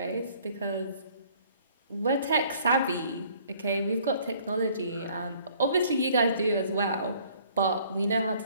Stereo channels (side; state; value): both; inverted; correlation -0.58